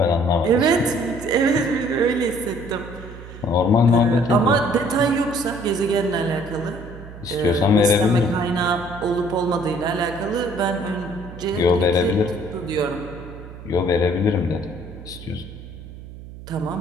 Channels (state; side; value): noise; right; hum, 15 dB below the sound